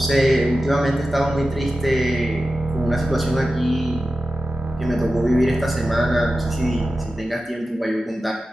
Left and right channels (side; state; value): both; normal; correlation 0.93